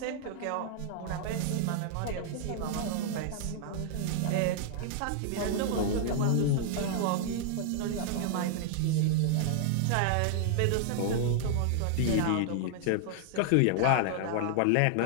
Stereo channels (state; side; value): different; both; correlation -0.01